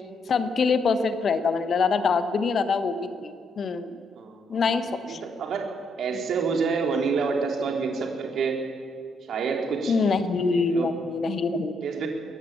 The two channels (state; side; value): normal; both; correlation 0.74